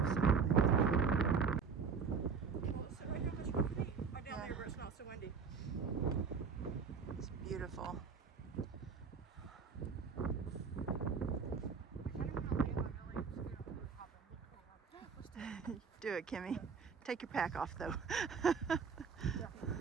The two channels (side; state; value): left; quieter; 5.8 dB